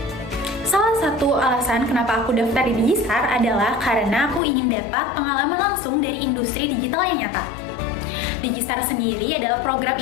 Salah satu alasan kenapa aku daftar di Digistar adalah karena aku ingin dapat pengalaman langsung dari industri digital yang nyata. Digistar sendiri adalah program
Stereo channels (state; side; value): drops out; right; at 4.4 s